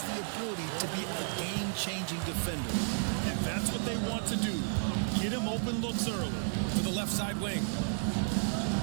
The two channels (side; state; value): left; silent; digital silence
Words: the ability to be a game-changing defender. And that's what they want to do. Get him open looks early. To the left side wing.